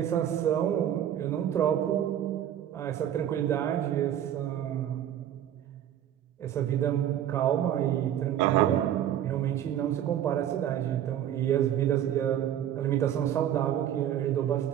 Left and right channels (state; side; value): quieter; left; 10.7 dB